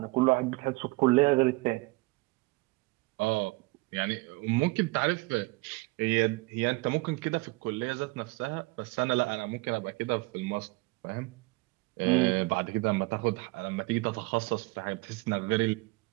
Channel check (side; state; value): left; quieter; 24.1 dB